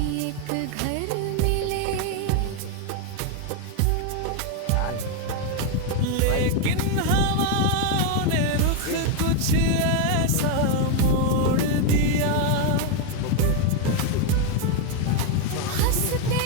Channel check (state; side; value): different; both; correlation 0.01